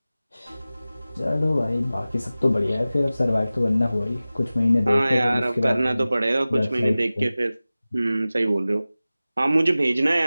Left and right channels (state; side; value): inverted; both; correlation -0.97